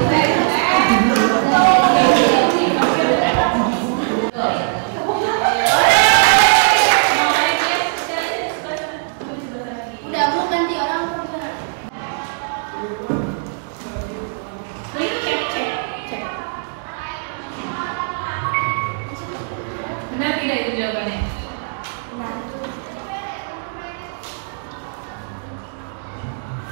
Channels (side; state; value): left; silent; 66 dB below the other